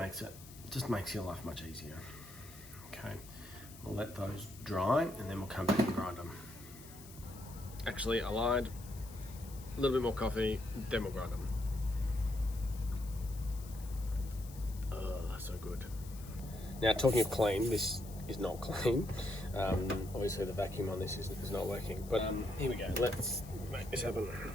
your life much easier. Okay, we'll let those dry and then we'll come back and grind them. Actually, I lied. A little bit more coffee, then we'll grind them. Oh, so good. Now, talking of clean, this is not clean. Obviously the vacuum on this is not working, but here we go. Let's make this happen.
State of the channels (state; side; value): noise; left; hiss, 18 dB below the sound